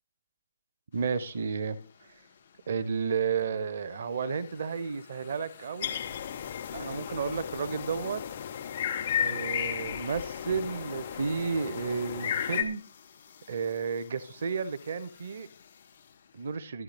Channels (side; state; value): both; inverted; correlation -0.68